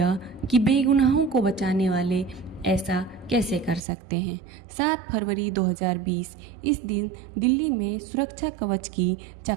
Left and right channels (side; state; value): left; drops out; at 3.8 s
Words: कि बेगुनाहों को बचाने वाले ऐसा कैसे कर सकते हैं। 7 फरवरी 2020 इस दिन दिल्ली में सुरक्षा कवच की